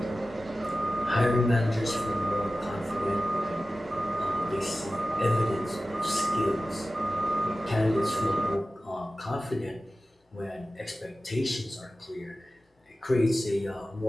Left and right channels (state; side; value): normal; both; correlation 0.95